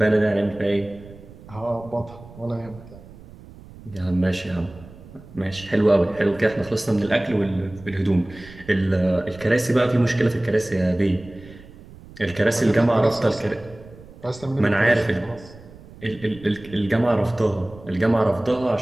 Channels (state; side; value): noise; right; rumble, 19 dB below the sound